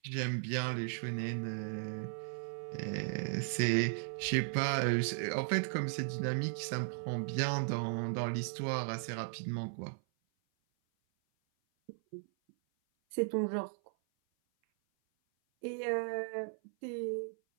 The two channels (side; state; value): left; silent; 53 dB below the other